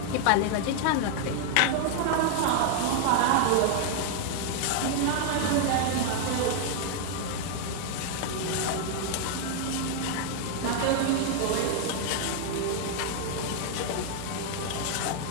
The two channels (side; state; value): both; different; correlation 0.00